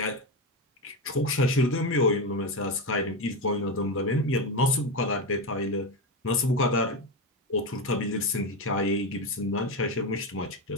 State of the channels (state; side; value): normal; both; correlation 0.14